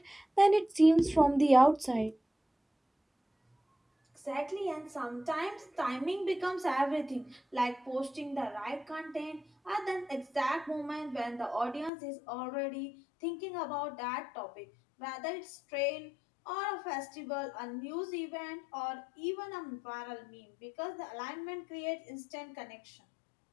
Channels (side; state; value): right; drops out; at 11.9 s